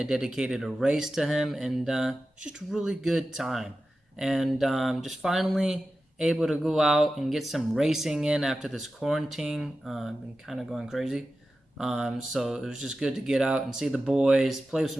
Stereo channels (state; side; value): normal; both; correlation 0.93